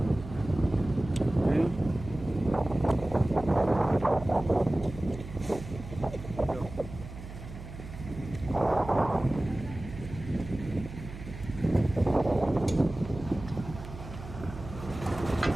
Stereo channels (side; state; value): right; noise; hum, 12 dB below the sound